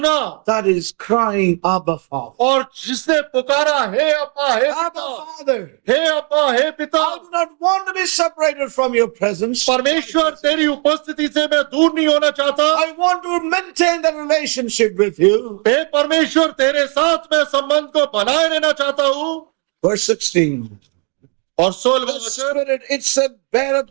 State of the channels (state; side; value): quieter; left; 38.1 dB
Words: That is crying, Abba, Father. और जिसने पुकारा हे अब्बा हे Abba, पिता, Father, हे अब्बा हे पिता। I do not want to be separated from your presence. परमेश्वर तेरी उपस्थिति से मैं दूर नहीं होना चाहता। I want to maintain the relationship with you. हे परमेश्वर तेरे साथ मैं संबंध को बनाए रहना चाहता हूँ। Verse 16. और 16वां The वचन, Spirit, it said, beareth